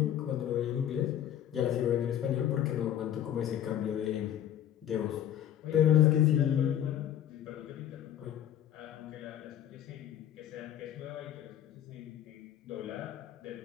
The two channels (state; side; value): quieter; right; 10.7 dB